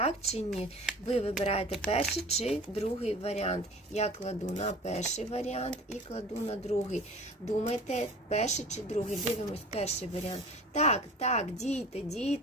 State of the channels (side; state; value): both; normal; correlation 0.42